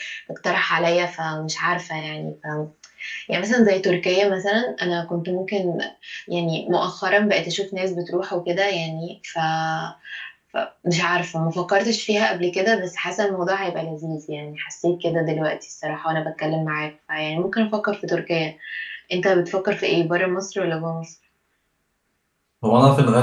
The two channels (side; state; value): both; identical; correlation 1.00